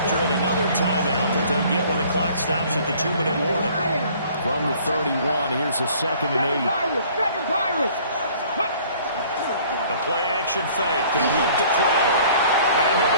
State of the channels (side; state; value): both; inverted; correlation -0.54